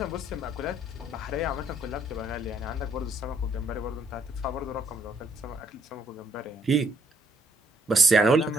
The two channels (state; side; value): normal; both; correlation 0.69